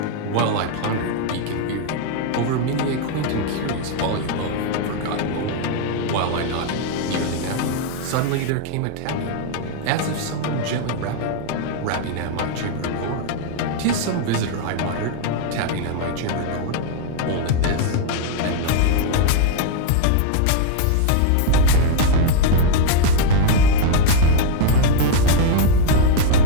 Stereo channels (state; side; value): different; both; correlation 0.00